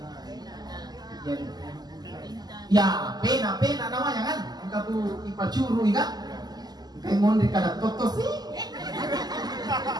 Ya, pena namanya kan? Engkau tuh ipacuru kan? Kayak mau kada totos sih.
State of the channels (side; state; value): left; late; 0.20 ms